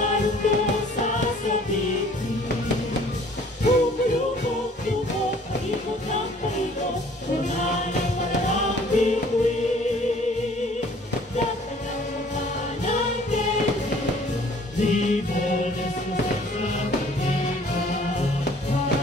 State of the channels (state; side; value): normal; both; correlation 0.55